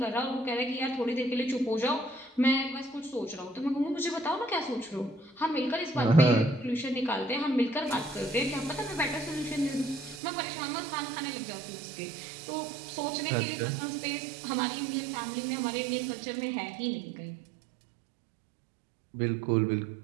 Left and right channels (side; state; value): left; drops out; at 10.2 s